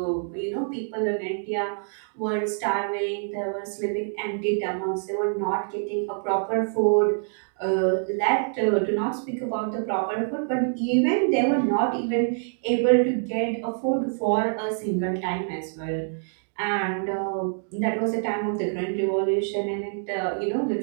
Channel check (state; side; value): silent; left; digital silence